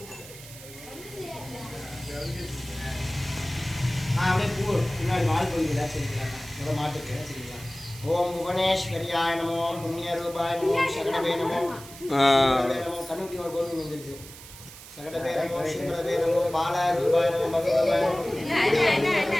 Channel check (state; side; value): noise; right; hiss, 16 dB below the sound